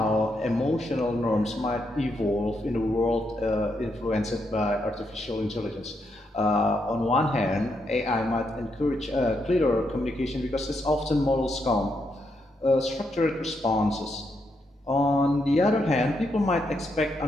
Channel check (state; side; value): normal; both; correlation 0.80